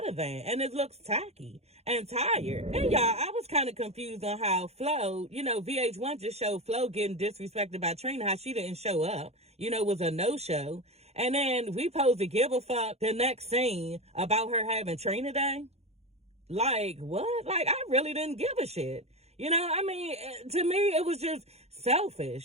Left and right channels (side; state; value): left; late; 0.31 ms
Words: than, and it looks tacky and tired. And y'all, I was kind of confused on how Flo, VH1 just showed Flo getting disrespected by Trina, how she didn't show up, was a no-show. And then we supposed to give a fuck the next scene about her having Trina Day. What? I really didn't give a shit. To me, it was just